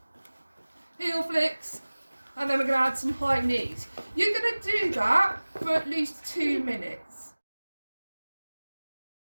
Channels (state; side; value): inverted; both; correlation -1.00